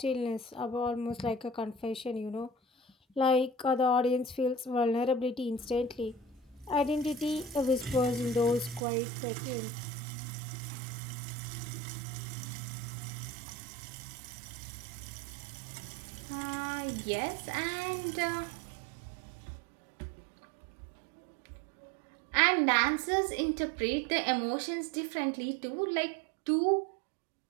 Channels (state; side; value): drops out; left; at 8.8 s